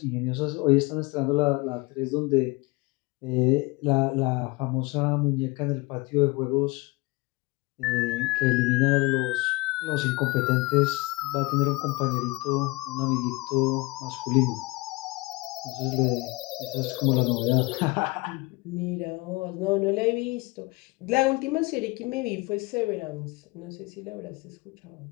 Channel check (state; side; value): quieter; right; 24.0 dB